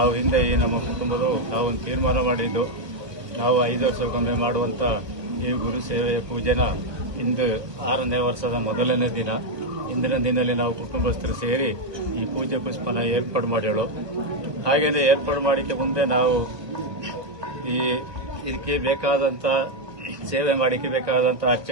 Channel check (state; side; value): late; left; 1.1 ms